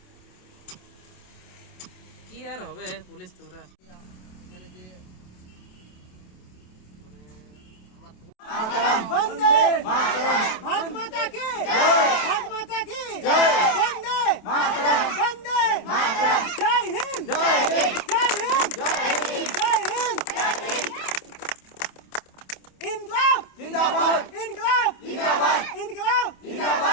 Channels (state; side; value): late; right; 27 ms